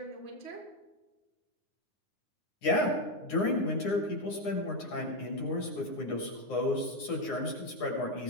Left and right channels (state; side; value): late; right; 9.7 ms